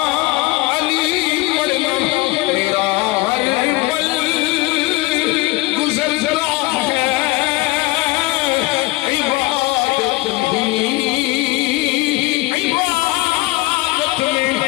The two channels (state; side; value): quieter; right; 21.3 dB